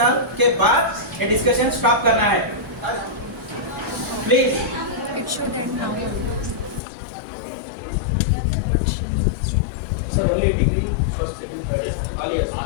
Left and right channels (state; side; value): drops out; right; at 6.8 s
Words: के बाद ये डिस्कशन स्टॉप करना है? Please. It should end now. Sir only degree first second third all yes.